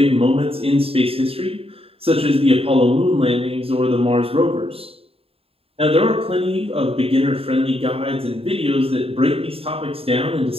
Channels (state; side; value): late; left; 0.28 ms